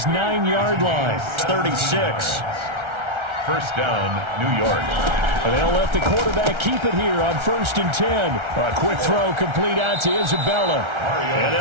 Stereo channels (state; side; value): late; left; 1.3 ms